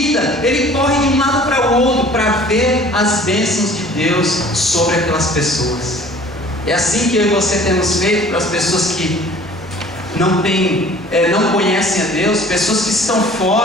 ele corre de um lado para o outro para ver as bênçãos de Deus sobre aquelas pessoas. É assim que eu e você temos feito para as pessoas que não conhecem a Deus, pessoas que estão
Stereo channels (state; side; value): normal; both; correlation 0.49